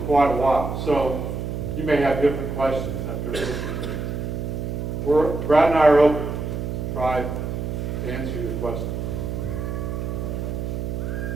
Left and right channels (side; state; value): right; noise; hum, 3 dB below the sound